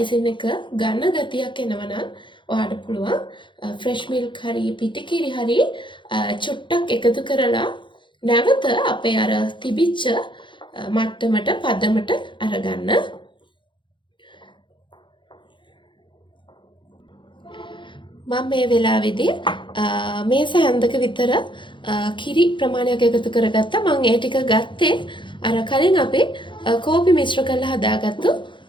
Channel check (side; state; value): right; late; 0.23 ms